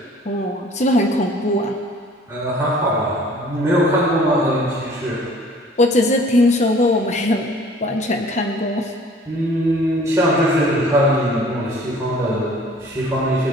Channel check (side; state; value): both; normal; correlation 0.52